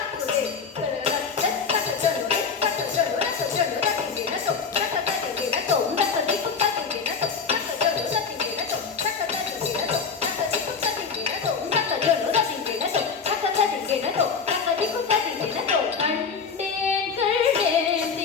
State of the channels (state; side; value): quieter; right; 5.6 dB